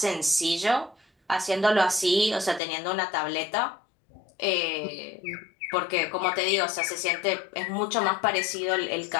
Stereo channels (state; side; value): drops out; right; at 2.6 s